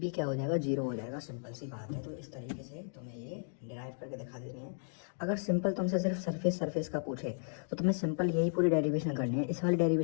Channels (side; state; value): right; silent; digital silence